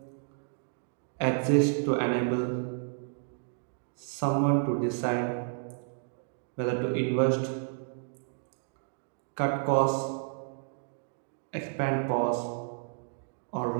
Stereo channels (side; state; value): left; silent; digital silence